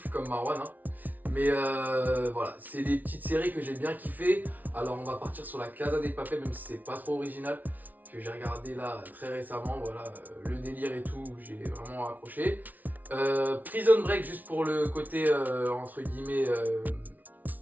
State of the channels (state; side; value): late; left; 0.079 ms